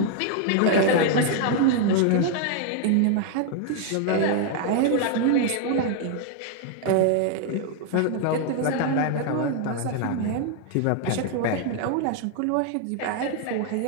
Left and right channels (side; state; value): both; different; correlation 0.00